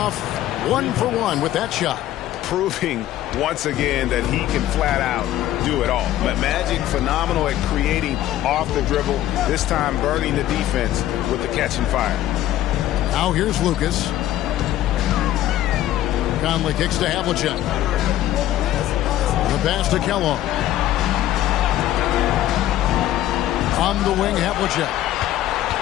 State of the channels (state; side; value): quieter; right; 13.4 dB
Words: 1 for 1 with that shot. Proving once again that he can flat out do it all. But Magic, phenomenal at creating off the dribble, this time burning the defense with the catch and fire. Now here's Lucas. Conley kicks to Havlicek. The pass to Kellogg. On the wing, Havlicek.